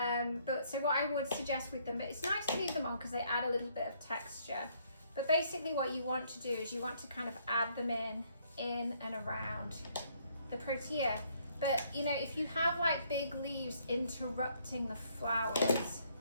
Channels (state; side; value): inverted; both; correlation -0.67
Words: But so what I would suggest with them, it's nice to leave them on because they add a little bit of texture. But basically what you want to do is you want to kind of add them in and around the protea. But you know, if you have like big leaves interrupting the flowers,